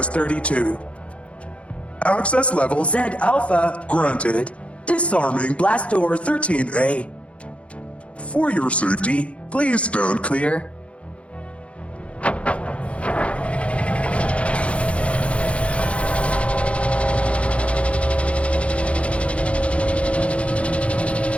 Access level Z Alpha granted. Disarming blast door 13A. For your safety, please stand clear.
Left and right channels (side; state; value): right; late; 0.062 ms